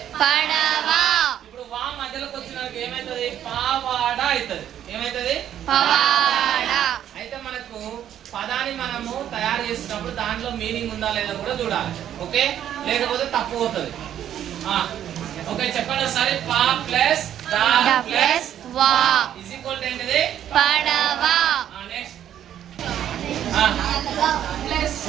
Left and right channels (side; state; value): left; quieter; 10.6 dB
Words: padava ఇప్పుడు వా మధ్యలోకి వచ్చినాక ఏమైతుంది? పావాడ అవుతుంది. ఏమైతుంది? pavada అయితే మనకు పదాన్ని మనము తయారు చేసినప్పుడు దాంట్లో మీనింగ్ ఉందా లేదా కూడా చూడాలి. ఓకే, లేకపోతే తప్పు అవుతుంది. ఓకే, చెప్పండి ఒకసారి. పా ప్లస్ దా plus wa is equal to ఏంటిది? padava next plus